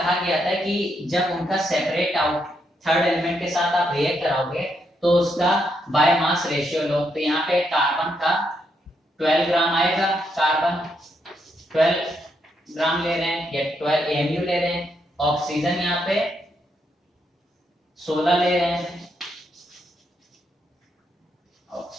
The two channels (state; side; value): normal; both; correlation 0.78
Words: गया था कि जब उनका सेपरेट आउट थर्ड एलिमेंट के साथ आप रिएक्ट कराओगे तो उसका बाय मास रेशियो लो। तो यहाँ पे कार्बन का 12 ग्राम आएगा, कार्बन 12 ग्राम ले रहे हैं या 12 AMU ले रहे हैं, ऑक्सीजन यहाँ पे 16 ले रहे हैं,